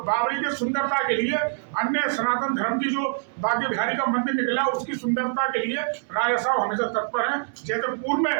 की सुंदरता के लिए, अन्य सनातन धर्म की जो बागे बिहारी का मंदिर निकला उसकी सुंदरता के लिए राजा साहब हमेशा तत्पर हैं। जैसे पूर्व में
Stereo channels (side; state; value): left; silent; digital silence